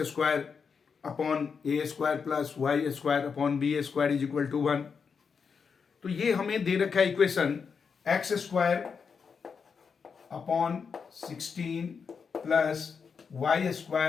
square upon a square plus y square upon b square is equal to 1। तो ये हमें दे रखा है equation x square upon 16 plus y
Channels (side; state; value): right; quieter; 5.9 dB